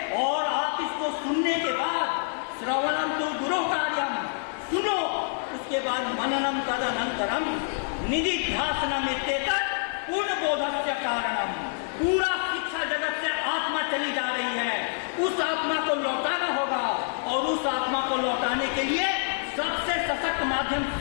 और आप इसको सुनने के बाद श्रवणम तो गुरु कार्यम, सुनो, उसके बाद मननम तदनंतरम निधिध्यासनम इत्येतत् पूर्ण बोधस्य कारणम। पूरा शिक्षा जगत से आत्मा चली जा रही है, उस आत्मा को लौटाना होगा और उस आत्मा को लौटाने के लिए सबसे सशक्त माध्यम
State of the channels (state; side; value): silent; right; 60 dB below the other